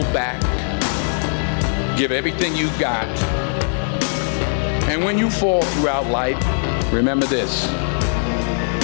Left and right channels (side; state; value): right; silent; 66 dB below the other